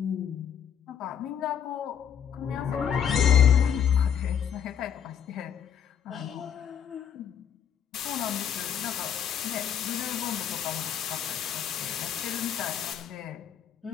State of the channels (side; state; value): right; quieter; 8.6 dB